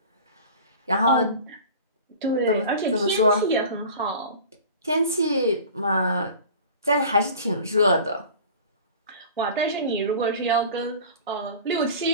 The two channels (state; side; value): inverted; both; correlation -0.40